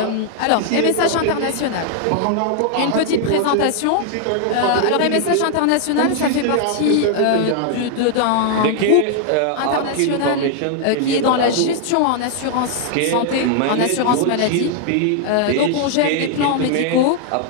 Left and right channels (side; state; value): both; different; correlation 0.00